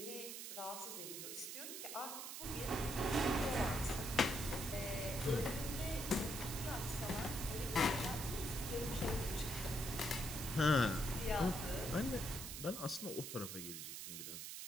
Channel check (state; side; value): noise; right; hiss, 7 dB below the sound